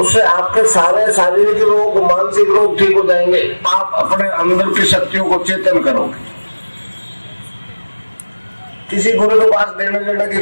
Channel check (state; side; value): inverted; both; correlation -1.00